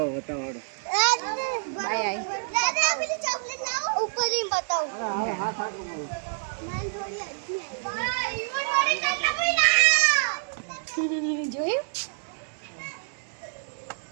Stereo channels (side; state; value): left; silent; digital silence